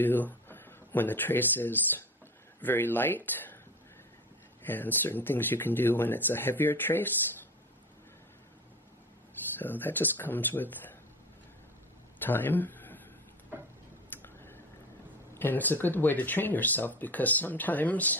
when the trace is very light, and certain things you can do when it's a heavier trace. So that just comes with time. And it's a good way to train yourself, because sometimes,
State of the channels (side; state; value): both; normal; correlation 0.30